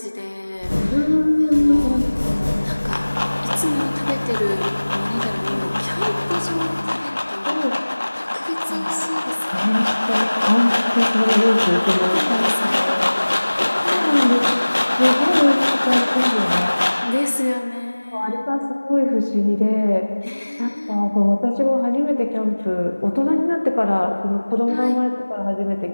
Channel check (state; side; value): inverted; both; correlation -1.00